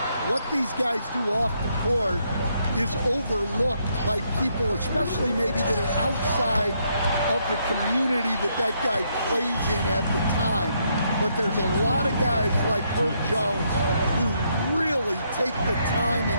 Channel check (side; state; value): both; inverted; correlation -0.75